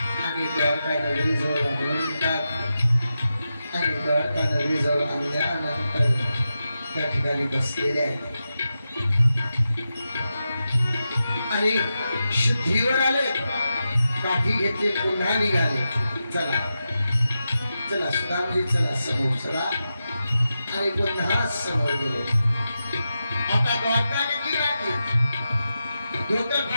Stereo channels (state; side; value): inverted; both; correlation -0.90